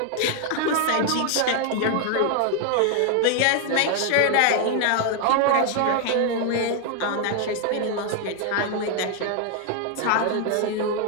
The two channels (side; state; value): both; different; correlation 0.00